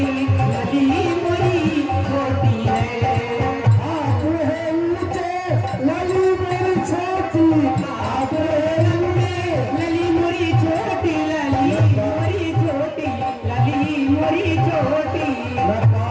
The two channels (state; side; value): identical; both; correlation 1.00